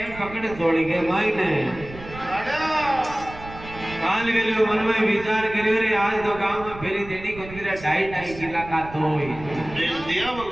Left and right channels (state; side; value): noise; right; rumble, 15 dB below the sound